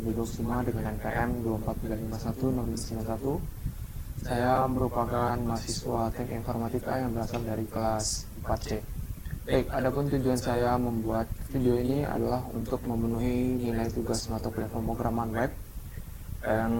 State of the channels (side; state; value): both; identical; correlation 1.00